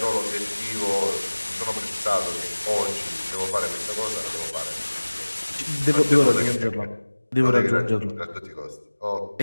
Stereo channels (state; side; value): inverted; both; correlation -1.00